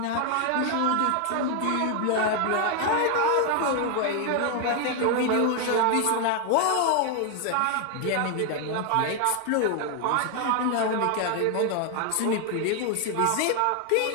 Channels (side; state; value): both; different; correlation 0.00